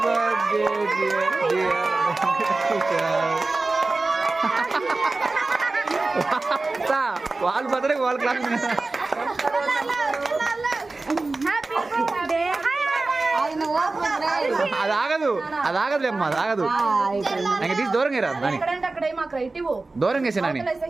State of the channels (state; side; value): quieter; left; 3.4 dB